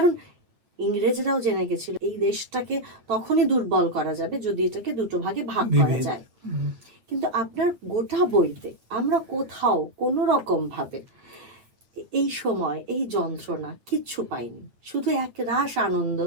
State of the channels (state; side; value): late; left; 8.9 ms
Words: ইংরেজরাও জেনে গেছিল এই দেশটাকে তখনই দুর্বল করা যাবে যদি এটাকে দুটো ভাগে ভাগ করা বিভেদ। যায়। কিন্তু আপনার গোটা বইতে আমরা কোথাও কোনো রকম ভাবে এই সময় এই যন্ত্রণা কিচ্ছু পাইনি, শুধু এক রাশ আনন্দ,